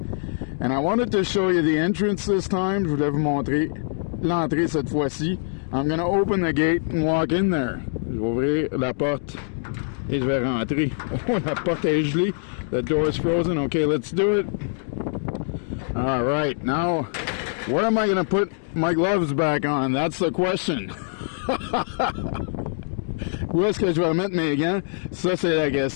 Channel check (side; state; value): right; silent; digital silence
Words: And I wanted to show you the entrance this time. Je voulais vous montrer l'entrée cette fois-ci. I'm gonna open the gate and walk in there. Je vais ouvrir la porte et je vais rentrer. Oh, la porte est gelée. The door is frozen. Okay, let's do it. All right, now, where am I gonna put my gloves back on? That's the question. Où est-ce que je vais mettre mes gants? Ça, c'est la